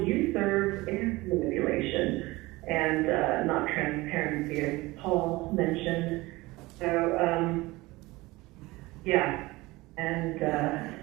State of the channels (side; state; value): left; quieter; 20.8 dB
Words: serve is manipulation and not transparency, as Paul mentioned. So, yeah. And